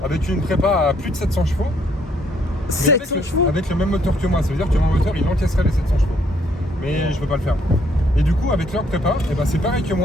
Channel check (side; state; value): both; normal; correlation 0.68